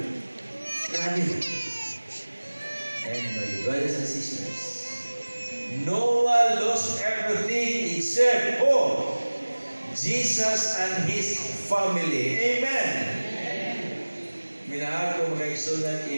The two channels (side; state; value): both; inverted; correlation -1.00